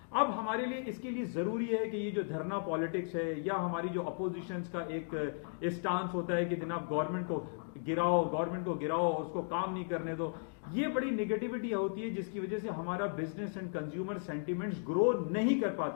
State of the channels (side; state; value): right; silent; digital silence